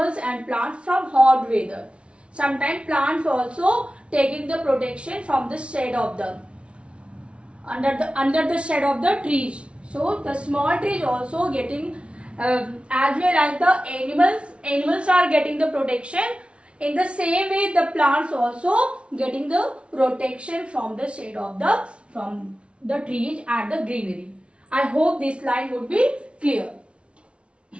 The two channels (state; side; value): late; left; 0.059 ms